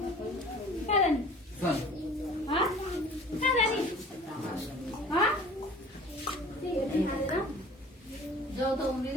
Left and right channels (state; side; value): normal; both; correlation 0.46